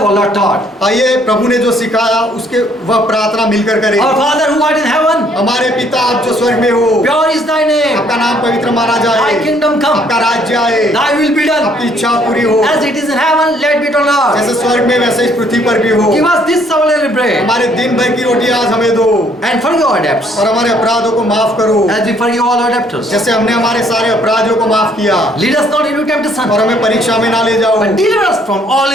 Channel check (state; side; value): normal; both; correlation 0.64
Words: for Lord taught. आइए प्रभु ने जो सिखाया उसके वह प्रार्थना मिलकर करें। Our Father who art in heaven, हमारे पिता आप जो स्वर्ग में हो, pure is thy name. आपका नाम पवित्र माना जाए, Thy kingdom come. आपका राज्य आए, Thy will be done. आपकी इच्छा पूरी हो, As it is in heaven, let it be on earth. जैसे स्वर्ग में वैसे इस पृथ्वी पर भी हो। Give us this our daily bread. हमारे दिन भर की रोटी आज हमें दो And forgive our debts, और हमारे अपराधों को माफ करो as we forgive all our debtors. जैसे हमने हमारे सारे अपराधियों को माफ किया, Lead us not into temptation, और हमें परीक्षा में ना ले जाओ but deliver us from all